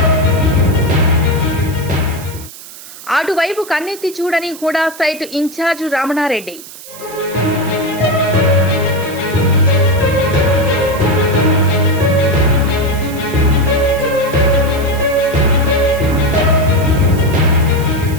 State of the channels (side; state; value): right; noise; hiss, 16 dB below the sound